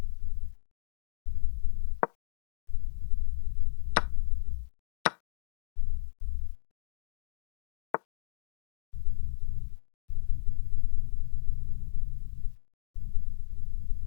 Here, I'll put something if it's me. They're attacking my pawn. Let's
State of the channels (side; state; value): right; silent; digital silence